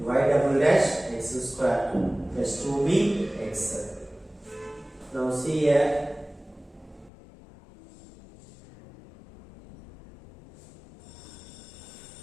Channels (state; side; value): drops out; right; at 7.1 s